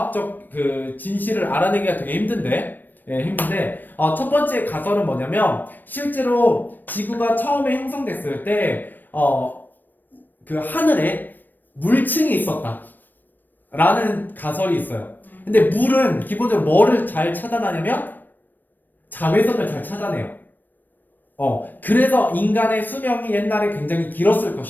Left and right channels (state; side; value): late; right; 0.091 ms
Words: 그 진실을 알아내기가 되게 힘든데 첫 번째 가설은 뭐냐면 실제로 지구가 처음에 형성됐을 때 그 하늘에 물층이 있었다 라는 가설이 있어요. 근데 물은 기본적으로 뭐를 잘 차단하냐면 자외선을 잘 차단해요. 그래서 인간의 수명이 옛날에 굉장히 길었을